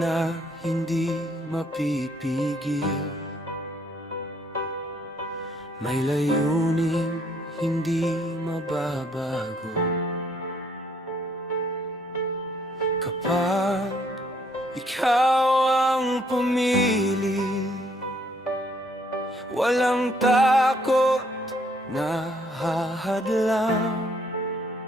hindi mapipigil, may layuning hindi mababago. Kapag ikaw ang pumili, walang takot na hahadlang.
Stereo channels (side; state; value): both; normal; correlation 0.67